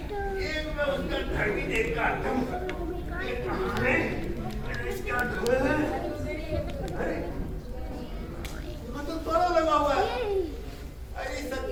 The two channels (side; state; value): both; identical; correlation 1.00